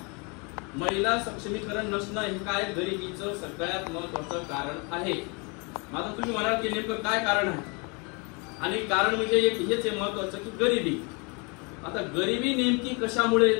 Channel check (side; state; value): right; quieter; 31.7 dB